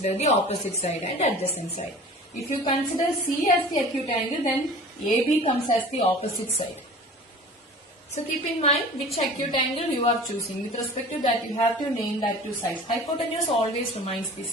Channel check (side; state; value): both; normal; correlation 0.42